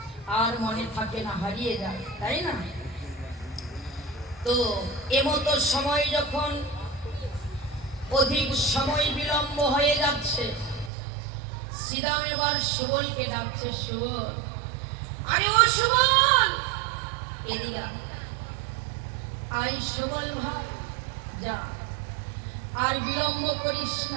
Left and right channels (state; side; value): drops out; left; at 10.9 s